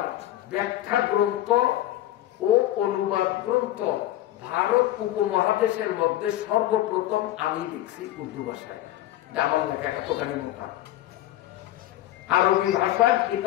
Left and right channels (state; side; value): quieter; right; 14.3 dB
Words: ব্যাখ্যা গ্রন্থ ও অনুবাদ গ্রন্থ ভারত উপমহাদেশের মধ্যে সর্বপ্রথম আমি লিখছি উর্দু ভাষায়। আমার লেখা এতখানি মোটা। আরবি ভাষার